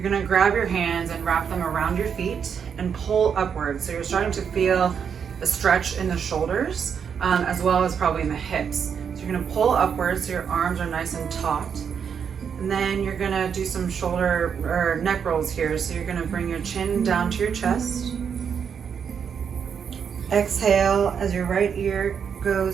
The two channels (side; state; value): left; quieter; 7.2 dB